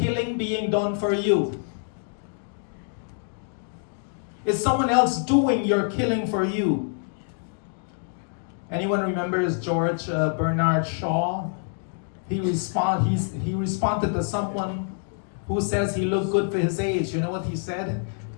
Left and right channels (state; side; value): silent; right; 61 dB below the other